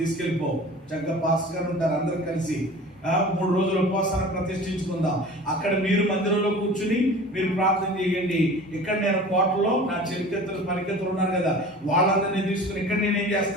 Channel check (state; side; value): normal; both; correlation 0.40